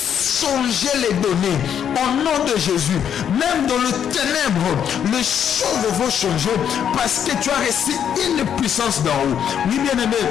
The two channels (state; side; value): quieter; right; 8.7 dB